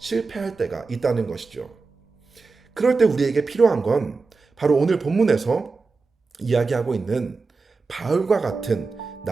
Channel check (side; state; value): left; quieter; 4.2 dB